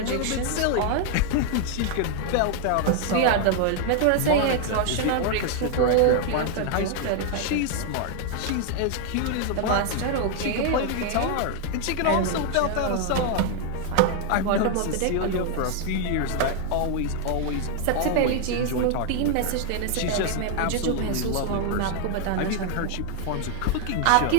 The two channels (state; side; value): different; both; correlation 0.00